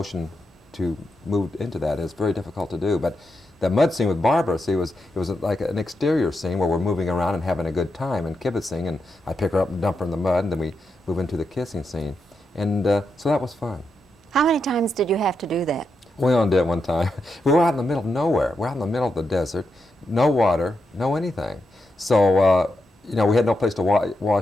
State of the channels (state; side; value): normal; both; correlation 0.85